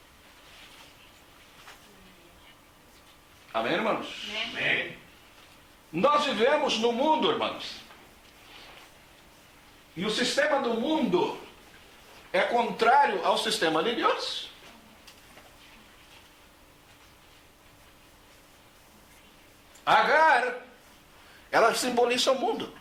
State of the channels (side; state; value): both; identical; correlation 1.00